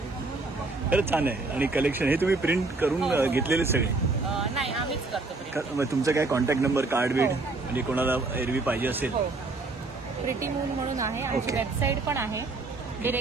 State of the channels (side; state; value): left; quieter; 3.5 dB